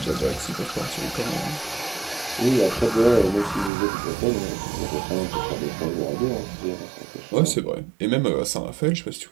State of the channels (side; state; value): left; drops out; at 3.7 s